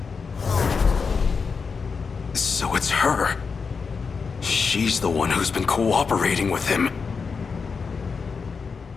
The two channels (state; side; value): quieter; right; 5.3 dB